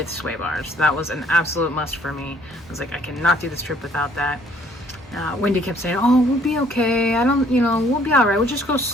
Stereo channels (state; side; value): normal; both; correlation 0.61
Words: sway bars. That was an absolute must for me. I was like, I cannot do this trip without that. Wendy kept saying, oh, we'll be okay. We'll be all right. We'll just go